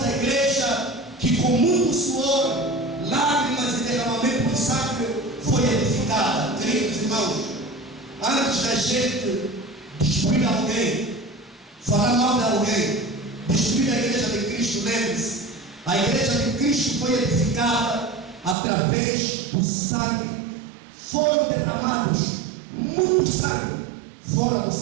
igreja, que com muito suor, lágrimas e derramamento de sangue foi edificada. Queridos irmãos, antes da gente destruir alguém, falar mal de alguém, destruir a igreja de Cristo, lembre-se, a igreja de Cristo foi edificada através do sangue. Foram derramados muito sangue, fora do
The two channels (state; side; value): drops out; left; at 18.6 s